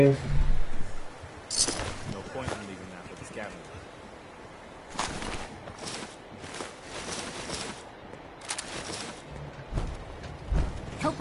No point in leaving that for the scavenger.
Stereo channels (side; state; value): both; identical; correlation 1.00